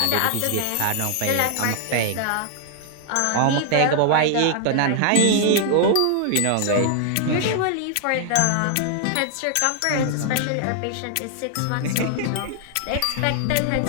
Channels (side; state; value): both; different; correlation 0.00